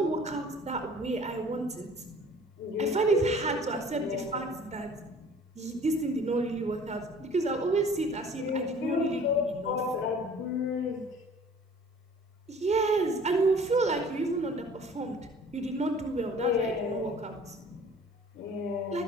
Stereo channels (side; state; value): both; normal; correlation 0.49